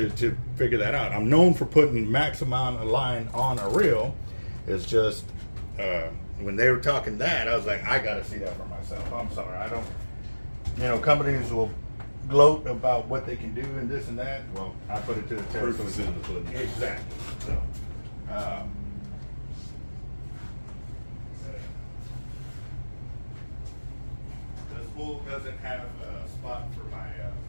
figure that out. I'm known for putting max amount of line on a reel. It's just... when they were talking that, I was like, I got to see that for myself. I'm sorry, I don't. You know, companies will gloat about what they can do and this and that. Well, I put it to the test. Proof is in the pudding. Exactly. So, the spool doesn't have a spot for my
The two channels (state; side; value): inverted; both; correlation -1.00